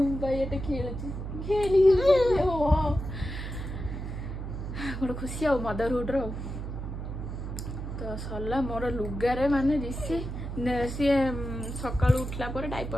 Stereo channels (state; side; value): noise; right; hum, 6 dB below the sound